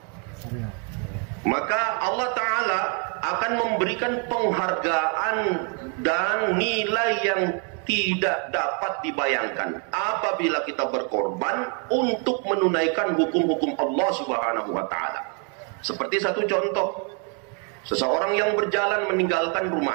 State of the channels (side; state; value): left; quieter; 37.3 dB